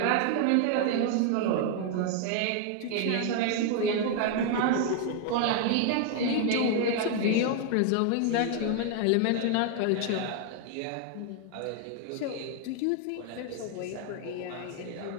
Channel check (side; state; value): both; different; correlation 0.00